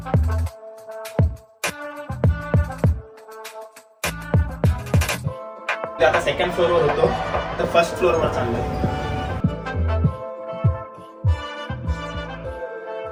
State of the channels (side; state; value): both; identical; correlation 1.00